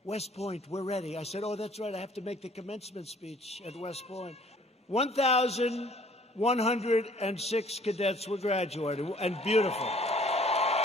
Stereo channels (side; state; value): both; normal; correlation 0.56